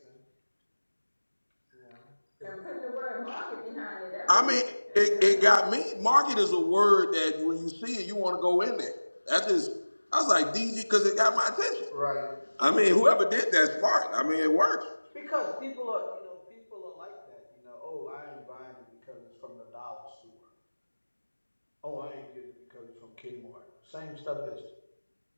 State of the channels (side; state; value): both; inverted; correlation -1.00